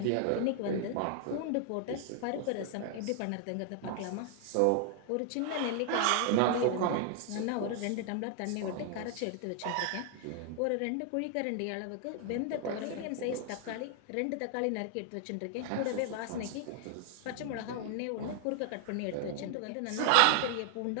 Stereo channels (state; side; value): different; both; correlation 0.00